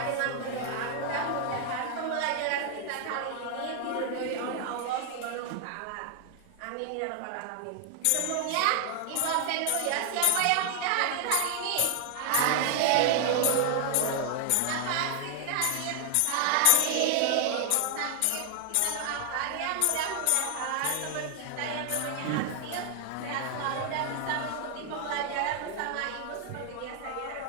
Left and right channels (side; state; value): both; different; correlation 0.00